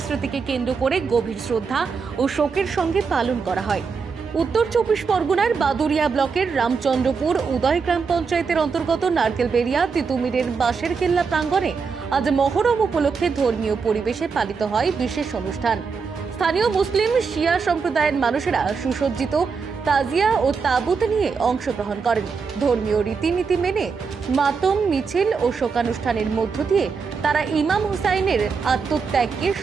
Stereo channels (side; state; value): left; quieter; 5.3 dB